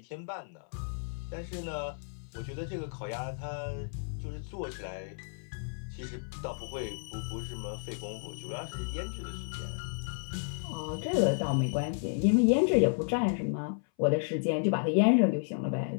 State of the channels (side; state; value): right; silent; 56 dB below the other